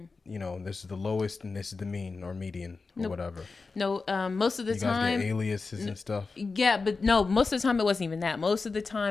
is the lowest, and this is the mean or median or whatever. No, most of the You guys time. get aliases and stuff. Yeah, but no, most of the time it wasn't even that. Most of the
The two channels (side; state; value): right; quieter; 4.2 dB